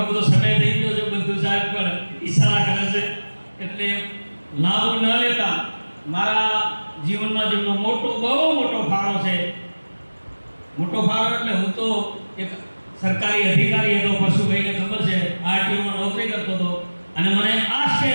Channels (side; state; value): both; inverted; correlation -1.00